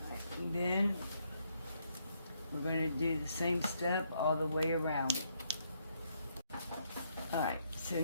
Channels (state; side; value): inverted; both; correlation -0.73